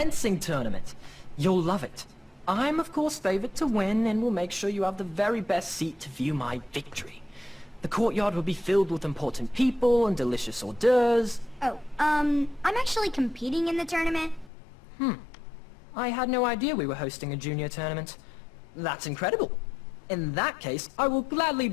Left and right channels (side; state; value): right; drops out; at 14.5 s